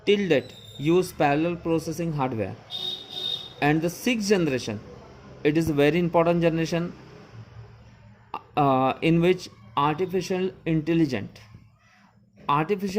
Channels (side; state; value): both; identical; correlation 1.00